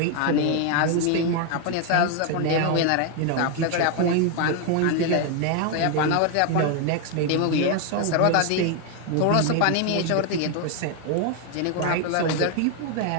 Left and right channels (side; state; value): both; different; correlation 0.01